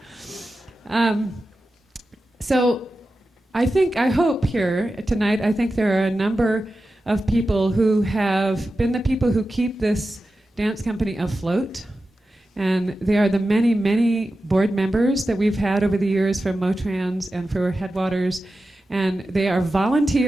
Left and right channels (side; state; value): both; normal; correlation 0.93